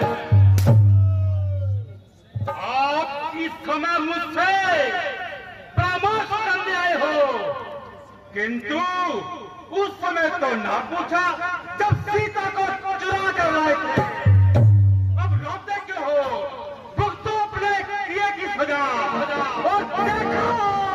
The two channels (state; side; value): identical; both; correlation 1.00